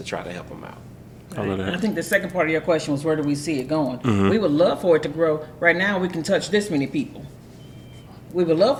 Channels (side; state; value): both; identical; correlation 1.00